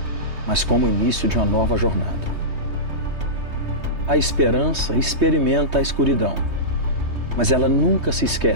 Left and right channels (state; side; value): late; left; 3.2 ms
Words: mas como o início de uma nova jornada. A esperança experimenta a escuridão, mas ela nunca se